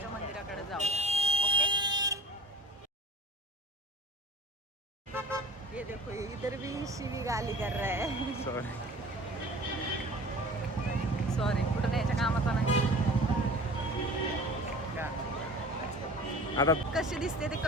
मंदिराकडे जाऊया. ओके, ये देखो इधर भी शिवी गाली कर रहा है. सॉरी कुठं याच्या कामाचा नाही. आता कशी दिसते ते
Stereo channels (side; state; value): both; normal; correlation 0.44